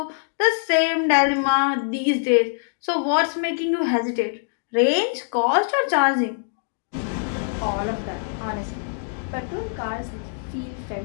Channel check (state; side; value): silent; right; digital silence